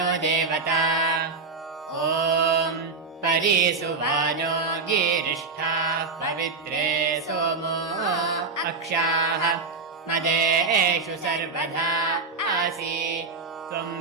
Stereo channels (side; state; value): left; quieter; 4.3 dB